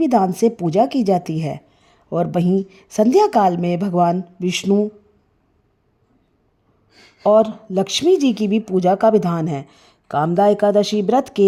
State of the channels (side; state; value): both; identical; correlation 1.00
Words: से पूजा की जाती है और वहीं संध्या काल में भगवान विष्णु और लक्ष्मी जी की भी पूजा का विधान है। कामदा एकादशी व्रत